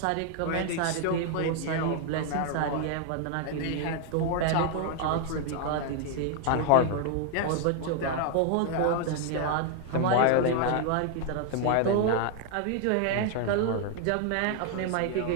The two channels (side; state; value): both; different; correlation 0.00